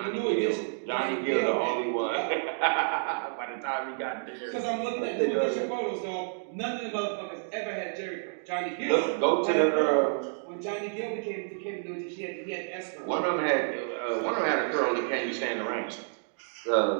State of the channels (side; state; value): left; silent; digital silence